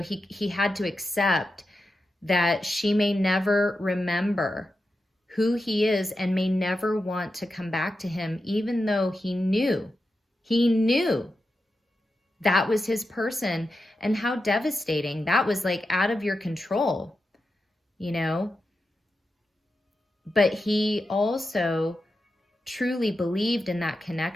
he had to accept that she may never remember who he is and may never want to come back to him, even though he knew that was his person. And how devastating. That was like out of your control, you know. But he also truly believed in that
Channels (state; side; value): normal; both; correlation 0.90